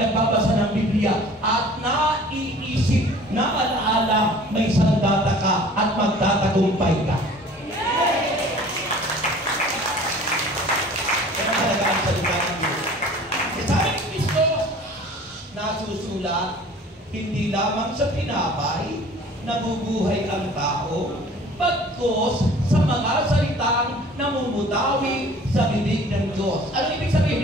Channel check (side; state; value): both; normal; correlation 0.48